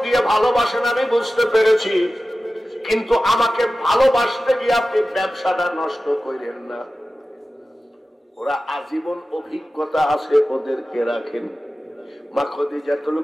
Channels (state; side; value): normal; both; correlation 0.95